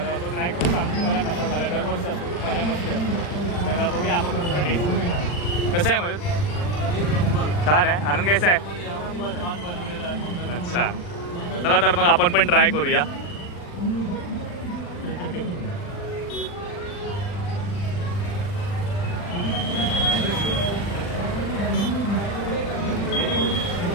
तो ट्राय करून सांगतो तुम्हाला कसा झाला. दरवर्षी असतो, खूप मजा मस्ती असतो. तर बघूया आपण थोडं टेस्ट करूया. कसं आहे मयूर? छान आहे. आनंद कैसा आहे? छान बनवलेलं आहे. अच्छा, चला तर मग आपण पण ट्राय करूया.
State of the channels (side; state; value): right; late; 40 ms